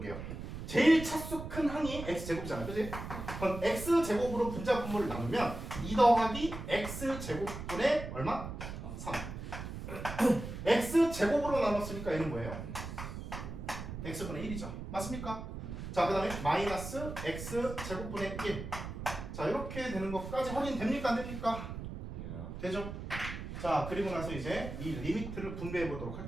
제일 차수 큰 항이 x제곱이잖아요, 그치? 그럼 x제곱으로 분자 분모를 나누면 2 더하기 x제곱분의 얼마? 3. x제곱으로 나눴으니까 얘는 뭐예요? x분의 1이죠. 맞습니까? 자, 그 다음에 마이너스 x제곱분의 1. 자, 이렇게 되는 것까지 확인됩니까? 안 됩니까? 되죠? 자, 그리고 나서 이제 이 리미트를 분배해 보도록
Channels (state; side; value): noise; right; rumble, 8 dB below the sound